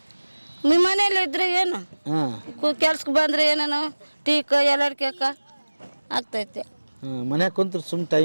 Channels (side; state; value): both; inverted; correlation -1.00